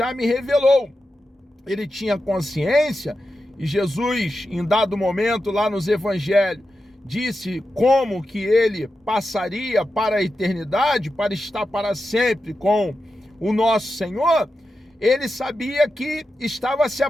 me revelou. Ele tinha consciência, e Jesus, em dado momento lá nos evangelhos, disse como que ele passaria para a eternidade, para estar para sempre com o nosso Senhor. Ele sabia que estava se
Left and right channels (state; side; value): normal; both; correlation 0.90